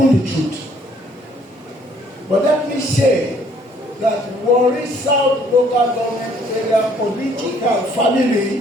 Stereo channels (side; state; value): both; normal; correlation 0.62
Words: the truth. But let me say that Warri South local government area political